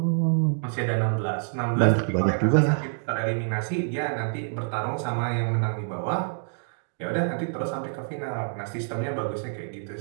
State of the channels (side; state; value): left; silent; digital silence